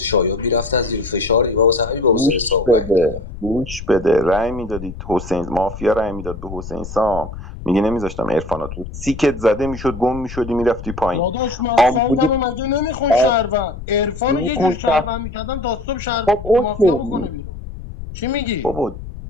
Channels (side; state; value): left; noise; rumble, 11 dB below the sound